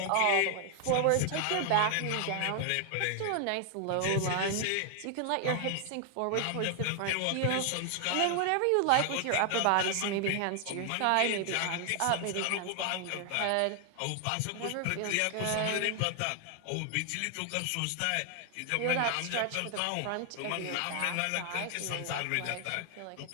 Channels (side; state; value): both; different; correlation 0.00